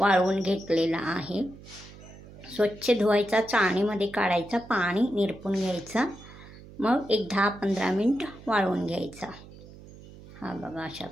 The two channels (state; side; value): noise; right; hum, 18 dB below the sound